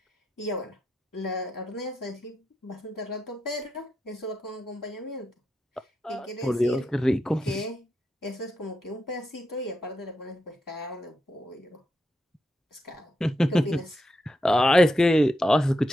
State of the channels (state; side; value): normal; both; correlation 0.85